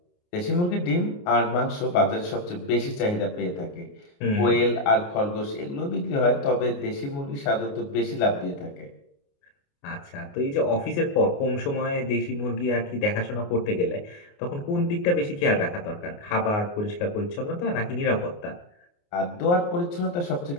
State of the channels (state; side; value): late; right; 29 ms